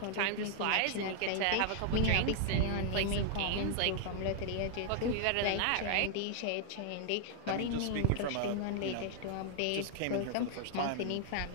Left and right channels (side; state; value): both; different; correlation -0.01